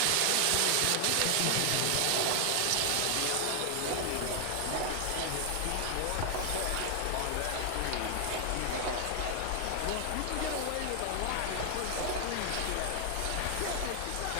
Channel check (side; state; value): both; different; correlation 0.00